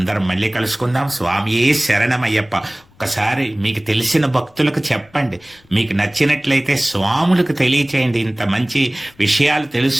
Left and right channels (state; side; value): noise; left; rumble, 30 dB below the sound